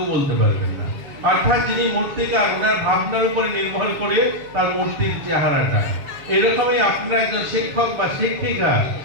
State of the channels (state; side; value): late; left; 7.1 ms